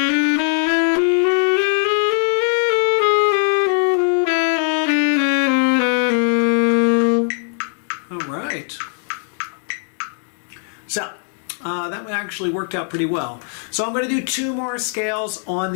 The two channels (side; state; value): right; silent; 56 dB below the other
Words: All right. So, that actually worked out pretty well. So I'm going to do 2 more scales on